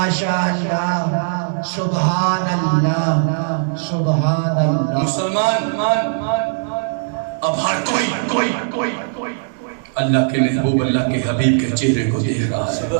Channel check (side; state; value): left; silent; digital silence